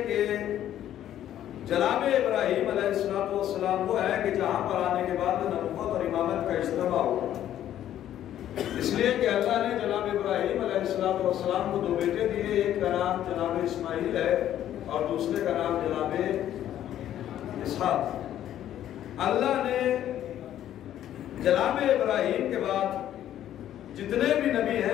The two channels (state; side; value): quieter; right; 11.6 dB